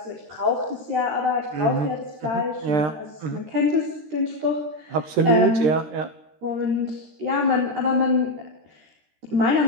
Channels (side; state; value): left; late; 13 ms